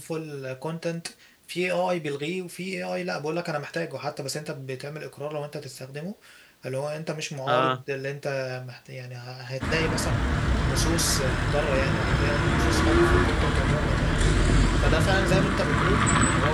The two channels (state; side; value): identical; both; correlation 1.00